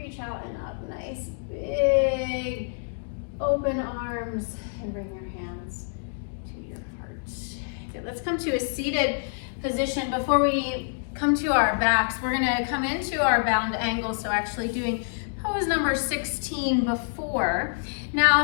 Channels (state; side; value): silent; right; digital silence